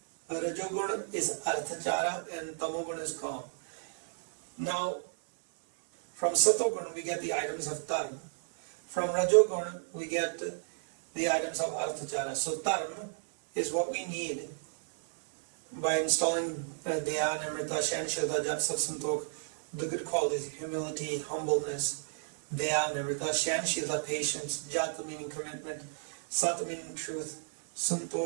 Rajogun is Arthachara, and Tamogun is Kam. Now, from Satogun we get the items of Dharma. From Rajogun we get the items of Arthachara. So Dharma is what we need by installing Daya, Nimrita, Shanshilta, Jat, Sat, Santok, the good qualities, humility, humbleness, Daya, Nimrita, Shanshilta, patience, Jat meaning commitment, Sat meaning truth,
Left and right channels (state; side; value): silent; left; digital silence